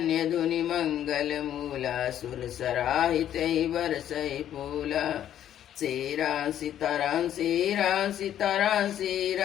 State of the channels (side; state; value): right; quieter; 10.8 dB